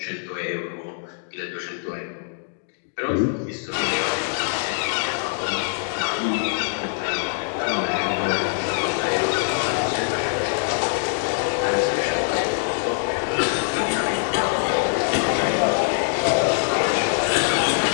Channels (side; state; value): right; silent; digital silence